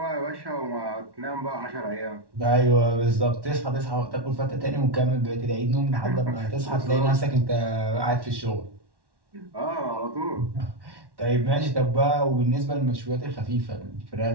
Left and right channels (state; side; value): late; left; 1.1 ms